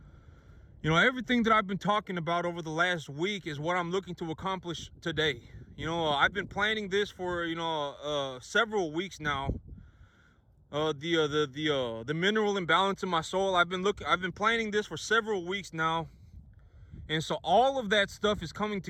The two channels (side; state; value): both; identical; correlation 1.00